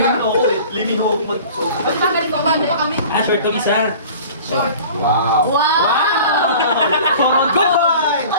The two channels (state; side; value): inverted; both; correlation -0.43